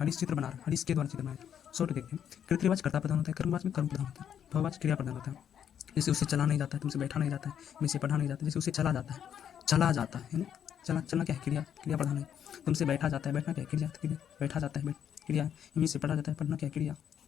चित्र बना रहा है, हरीश के द्वारा चित्र बनाया। शॉर्ट देखते हैं, कृतवाच कर्ता प्रधान होता है, कर्मवाच में कर्म प्रधान होता है, भाववाच क्रिया प्रधान होता है। जैसे उससे चला नहीं जाता है, तुमसे बैठा नहीं जाता है, में से पढ़ा नहीं जाता, जैसे उससे चला जाता है, चला जाता है ना, चला चलना क्या है, क्रिया, क्रिया प्रधान है। तुमसे बैठा जाता है, बैठना क्या है, क्रिया, क्रिया बैठा जाता है, क्रिया, इनमें से पढ़ा जाता है, पढ़ना क्या है, क्रिया,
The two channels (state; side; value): quieter; right; 9.0 dB